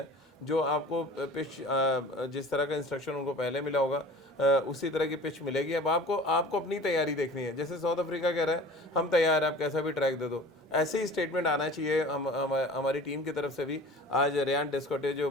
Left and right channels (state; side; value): normal; both; correlation 0.42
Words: जो आपको पिच जिस तरह का इंस्ट्रक्शन उनको पहले मिला होगा उसी तरह की पिच मिलेगी। अब आपको अपनी तैयारी देखनी है। जैसे साउथ अफ्रीका कह रहा है हम तैयार हैं, आप कैसा भी ट्रैक दे दो, ऐसे ही स्टेटमेंट आना चाहिए हमारी टीम की तरफ से भी। आज रेयान डेस्कोटे